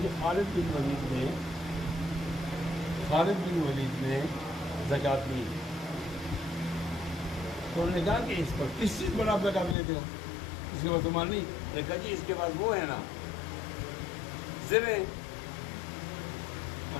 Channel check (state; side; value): drops out; right; at 9.8 s